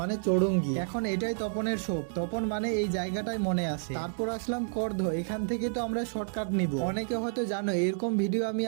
মানে চৌরঙ্গি। এখন এটাই তপনের শোক, তপন মানে এই জায়গাটাই মনে আসে। তারপর আসলাম করধ, এখান থেকে তো আমরা শর্টকাট নিব। অনেকে হয়তো জানো এরকম ভিডিও আমি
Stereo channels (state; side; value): silent; left; digital silence